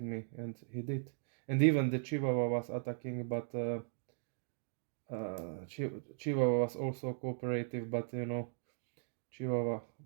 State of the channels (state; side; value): silent; left; digital silence